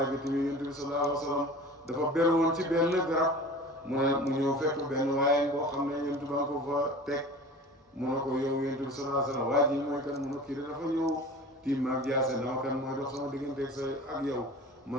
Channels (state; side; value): normal; both; correlation 0.39